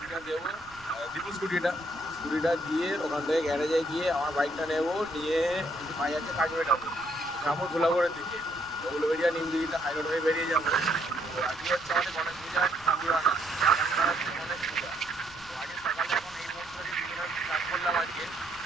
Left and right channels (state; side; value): noise; right; rumble, 24 dB below the sound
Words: দেবো, দীপু স্কুটিটা দিয়ে ওখান থেকে গ্যারেজে গিয়ে আমার বাইকটা নেবো, নিয়ে একটু পাই আছে কাজবেটাতে যাবো ধুলাগড়ের দিকে। তো উলুবেড়িয়া নিমদিঘিটা হাই রোড হয়ে বেরিয়ে যাবো। তো আজকে হচ্ছে আমাদের গণেশ পূজার ঠাকুরানা, গণেশ পূজা। তো আজকে সকালে এখন এই মুহূর্তে স্টার্ট করলাম আজকে।